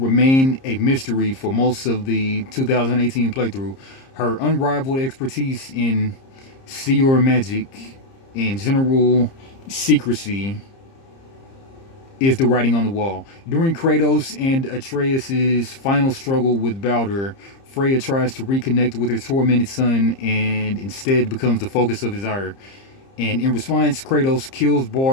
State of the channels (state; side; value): late; right; 30 ms